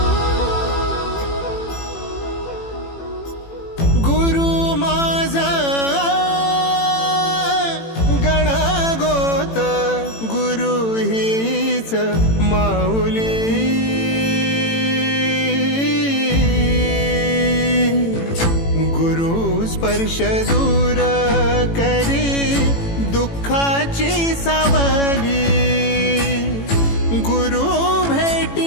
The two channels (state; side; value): late; right; 18 ms